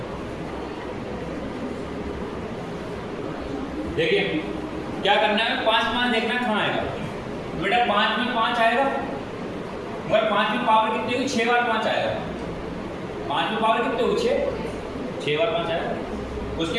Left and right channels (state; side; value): identical; both; correlation 1.00